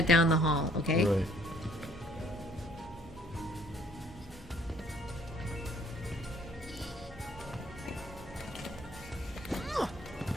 down the hall, okay? Right.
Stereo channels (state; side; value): normal; both; correlation 0.61